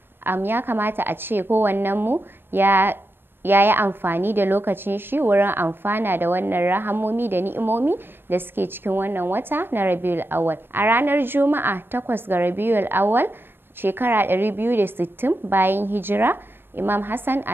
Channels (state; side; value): late; left; 0.10 ms